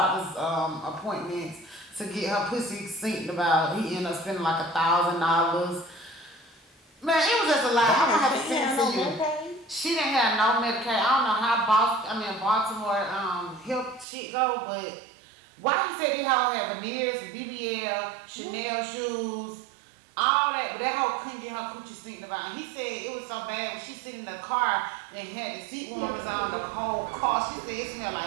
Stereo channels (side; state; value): left; drops out; at 14.1 s